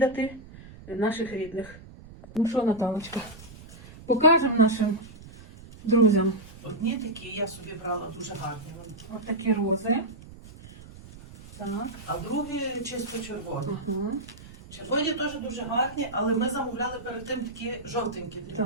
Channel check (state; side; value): noise; right; rumble, 18 dB below the sound